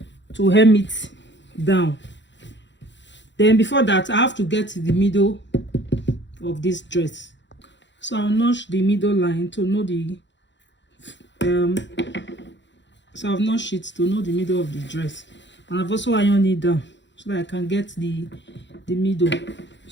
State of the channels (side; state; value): right; late; 0.53 ms